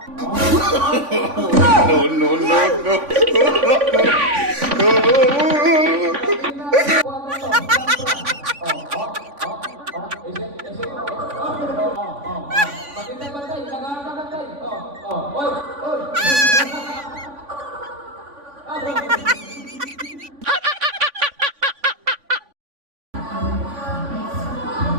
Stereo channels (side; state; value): left; late; 3.5 ms